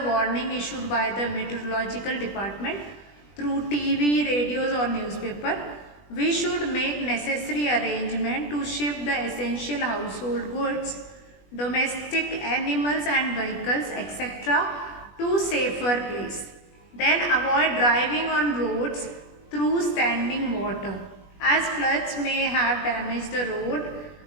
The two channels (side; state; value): right; late; 20 ms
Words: warning issued by the meteorological department through TV, radios or newspaper. We should make necessary arrangement to shift the essential household goods, domestic animals and vehicles, etc. to safer place. Then avoid driving on roads through standing water, as floods may have damaged the road,